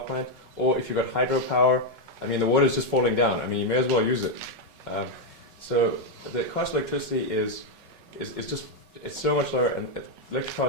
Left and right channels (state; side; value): late; left; 5.4 ms